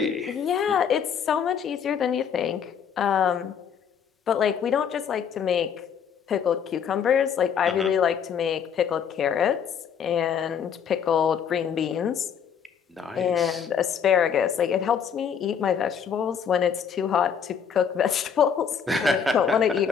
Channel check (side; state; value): right; quieter; 7.5 dB